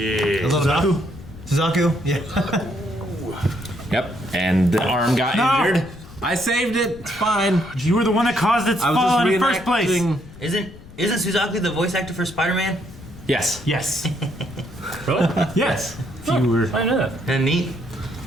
A little Suzaku. Yeah. Yep, and the arm got No. injured. I saved it. It's fine. You were the one that caused its I was fall just in the first place. reenacting- Isn't Suzaku the voice actor for Spider-Man? Yes. Yes. Really? Yes. If you were. I know that. And neat.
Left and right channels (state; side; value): noise; left; rumble, 18 dB below the sound